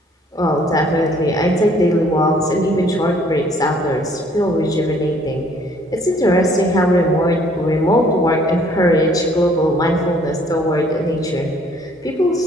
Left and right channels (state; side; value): normal; both; correlation 0.60